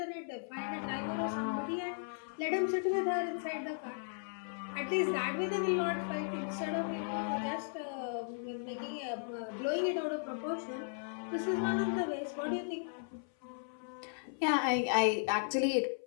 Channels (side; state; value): right; silent; 54 dB below the other